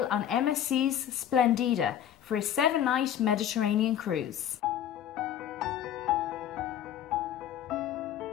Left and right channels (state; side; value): quieter; right; 10.3 dB